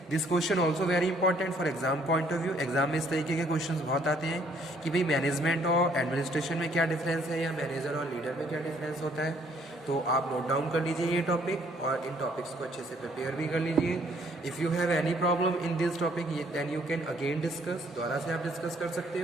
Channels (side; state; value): both; normal; correlation 0.64